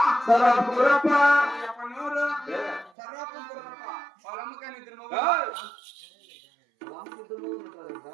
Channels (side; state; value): left; drops out; at 2.9 s